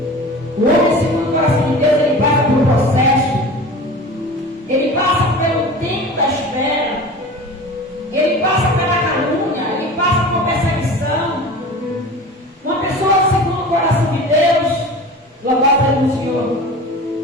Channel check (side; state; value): both; normal; correlation 0.36